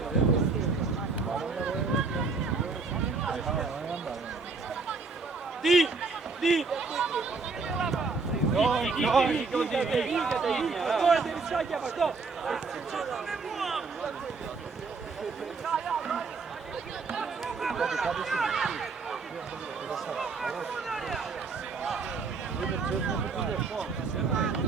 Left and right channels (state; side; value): quieter; left; 4.4 dB